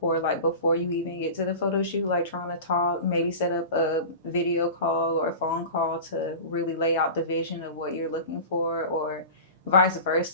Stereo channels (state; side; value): inverted; both; correlation -0.33